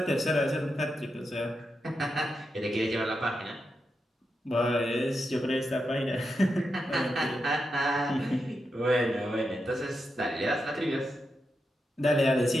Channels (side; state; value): both; normal; correlation 0.86